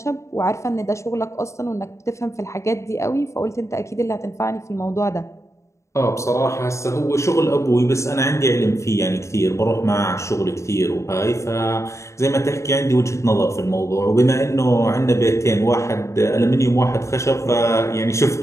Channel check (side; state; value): right; late; 0.14 ms